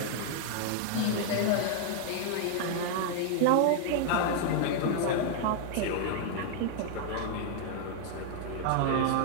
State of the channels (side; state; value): both; different; correlation 0.00